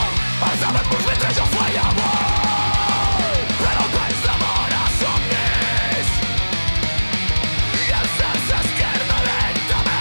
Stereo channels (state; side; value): inverted; both; correlation -1.00